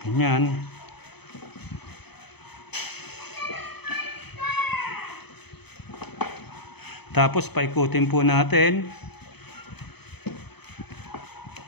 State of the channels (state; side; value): late; right; 0.98 ms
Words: Ganyan. Tapos paikutin po natin.